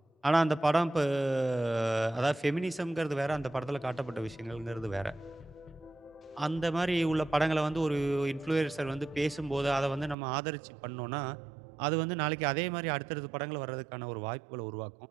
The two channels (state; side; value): drops out; left; at 10.2 s